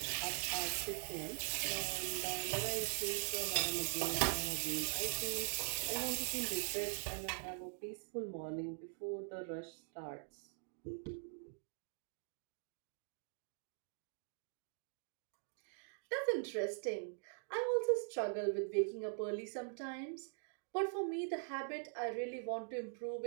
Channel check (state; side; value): silent; left; digital silence